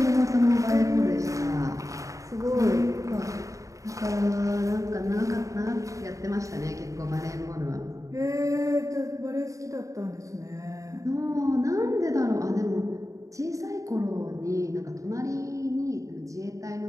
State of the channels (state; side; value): late; left; 0.16 ms